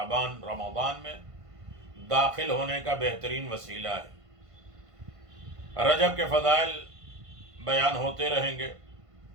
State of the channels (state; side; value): late; left; 1.5 ms